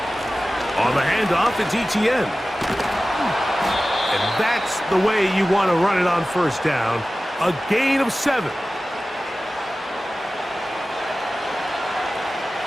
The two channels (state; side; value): normal; both; correlation 0.96